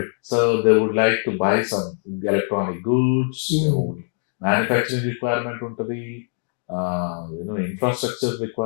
So they would like to buy some electronic goods, manufacturing requirement untadi, infrastructure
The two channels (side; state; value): right; silent; 56 dB below the other